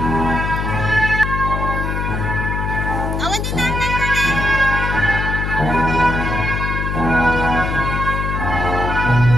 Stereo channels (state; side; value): noise; left; hum, 2 dB below the sound